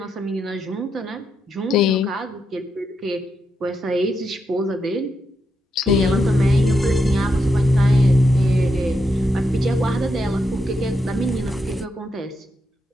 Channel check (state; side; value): normal; both; correlation 0.83